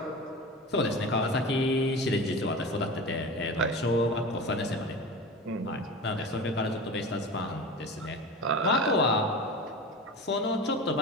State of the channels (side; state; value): both; normal; correlation 0.30